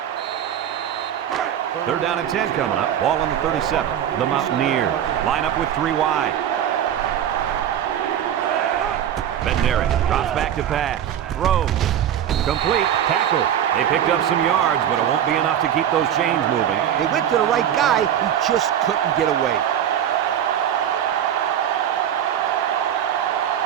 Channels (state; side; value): quieter; left; 10.0 dB